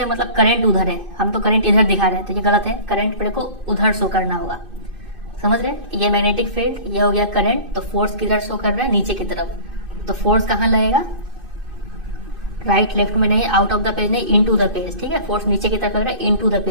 मतलब करंट उधर है, हम तो करंट इधर दिखा रहे हैं, तो ये गलत है, करंट पेड़ को उधर शो करना होगा, समझ रहे। ये मैग्नेटिक फील्ड, ये हो गया करंट, तो फोर्स किधर शो कर रहा है, नीचे की तरफ। तो फोर्स कहाँ लगेगा, राइट लेफ्ट में नहीं, आउट ऑफ द पेज नहीं, इनटू द पेज, ठीक है। फोर्स नीचे की तरफ लग रहा है, इनटू द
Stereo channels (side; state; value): left; late; 2.5 ms